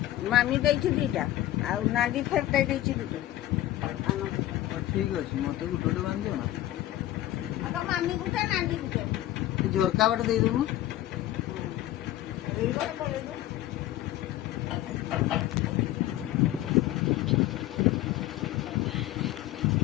ମାମି ଦେଇଛି ଦିଟା ଆଉ ନାଣ୍ଡି ଫେରଟା ଦେଇଛି ଦିଟା। ଠିକ ଅଛି ମତେ ଗୋଟେ ଗୋଟେ ବାନ୍ଧିଦିଅ ନା। ମାମି ଗୋଟେ ନାଣ୍ଡି ଗୋଟେ ଝରକା ବାଟେ ଦେଇଦବୁ।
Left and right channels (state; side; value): quieter; right; 14.4 dB